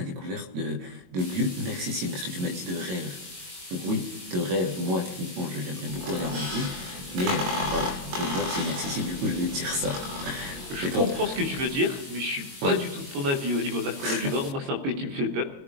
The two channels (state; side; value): late; left; 22 ms